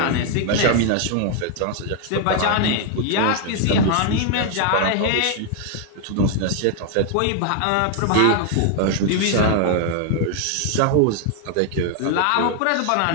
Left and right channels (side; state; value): both; different; correlation 0.00